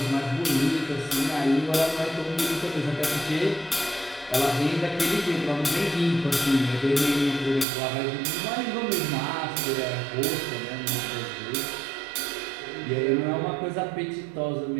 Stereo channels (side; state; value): left; drops out; at 7.7 s